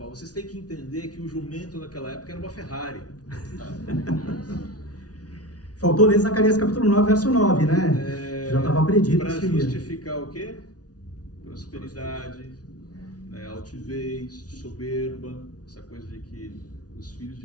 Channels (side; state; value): right; late; 0.68 ms